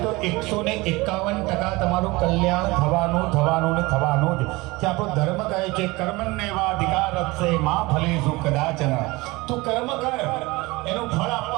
તો 151% તમારું કલ્યાણ થવાનું ને થવાનું જ. કે આપણો ધર્મ કહે છે કર્મણ્યેવા અધિકારસ્તે મા ફલેષુ કદાચન. તું કર્મ કર, એનું ફળ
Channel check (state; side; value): quieter; left; 22.5 dB